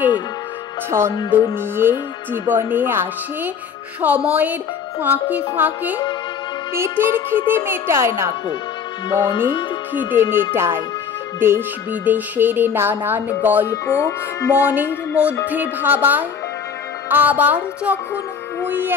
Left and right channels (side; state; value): right; quieter; 6.9 dB